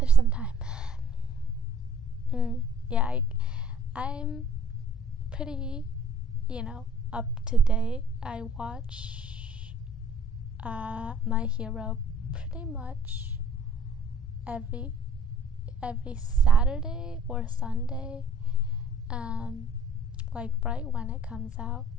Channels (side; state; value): both; normal; correlation 0.54